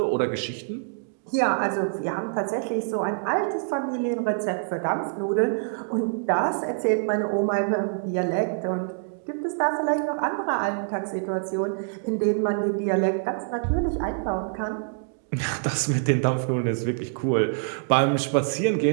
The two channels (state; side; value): silent; left; digital silence